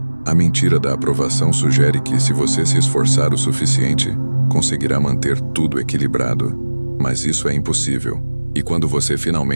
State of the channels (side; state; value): both; inverted; correlation -1.00